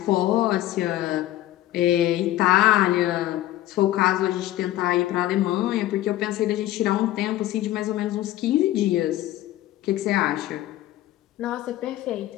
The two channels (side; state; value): right; quieter; 14.8 dB